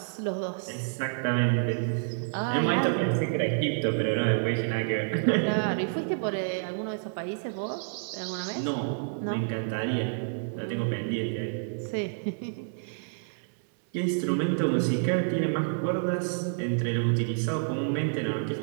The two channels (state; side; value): silent; left; digital silence